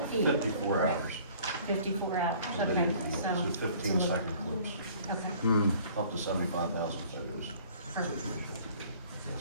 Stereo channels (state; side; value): inverted; both; correlation -0.53